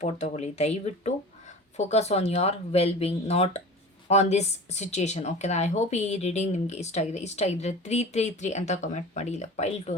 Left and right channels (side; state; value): both; normal; correlation 0.36